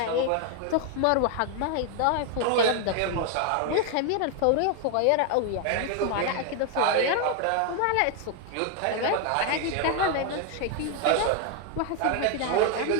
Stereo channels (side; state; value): both; different; correlation 0.01